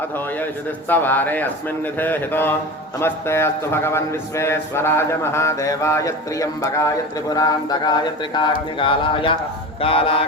अथो येषुतिस्तवारे अस्मिन्निधे हितो नमस्ते अस्तु भगवन् विश्वेश्वराय महादेवाय त्र्यम्बकाय त्रिपुरान्तकाय त्रिकाग्निकालाय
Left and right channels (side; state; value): both; normal; correlation 0.30